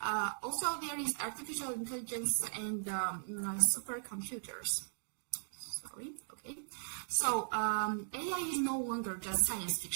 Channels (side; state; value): left; silent; digital silence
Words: Also, there is artificial intelligence and supercomputers. So AI is no longer just science